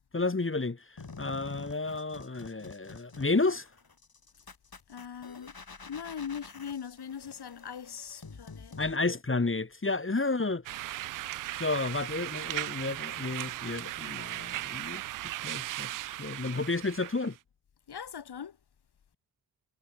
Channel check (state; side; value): normal; both; correlation 0.17